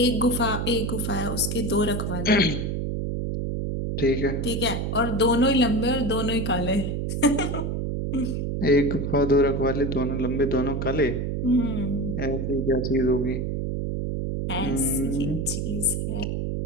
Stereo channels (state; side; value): noise; right; hum, 1 dB below the sound